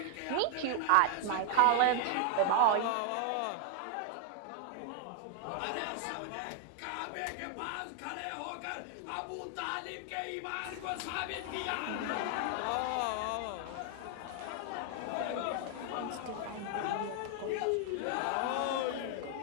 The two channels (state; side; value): different; both; correlation 0.00